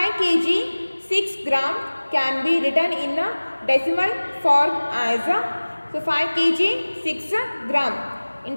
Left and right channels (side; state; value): both; inverted; correlation -1.00